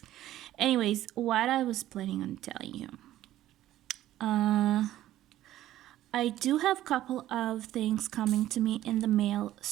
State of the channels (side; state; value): left; quieter; 13.7 dB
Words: Anyways, what I was planning on telling you, I do have a couple of things coming to me in the mail